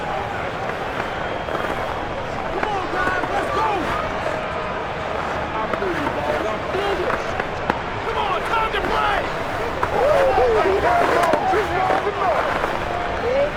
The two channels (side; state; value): both; identical; correlation 1.00